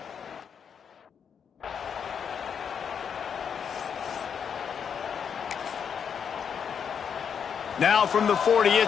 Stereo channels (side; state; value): right; quieter; 7.3 dB